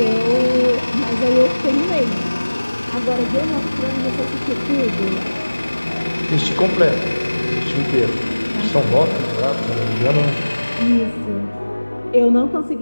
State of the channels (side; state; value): both; inverted; correlation -1.00